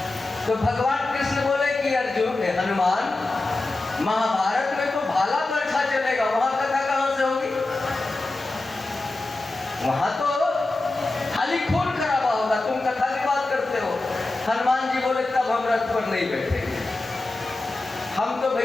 तो भगवान कृष्ण बोले कि अर्जुन हनुमान महाभारत में तो भाला बरछा चलेगा, वहां कथा कहां से होगी? वहां तो खाली खून खराबा होगा, तुम कथा की बात करते हो। हनुमान जी बोले तब हम रथ पर नहीं बैठेंगे, हम तो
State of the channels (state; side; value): quieter; right; 3.0 dB